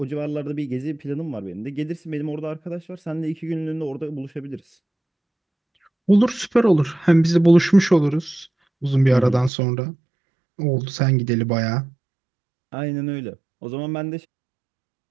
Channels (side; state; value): left; drops out; at 9.5 s